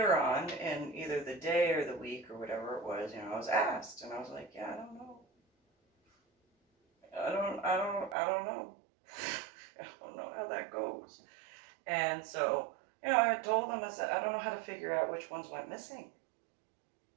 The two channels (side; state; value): left; drops out; at 8.2 s